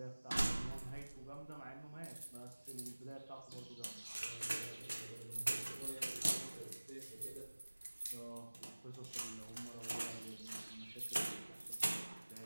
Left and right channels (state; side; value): inverted; both; correlation -1.00